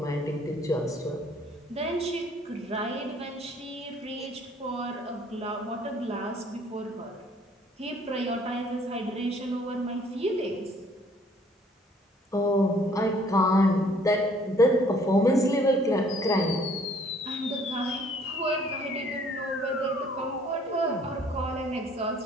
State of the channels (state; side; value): normal; both; correlation 0.59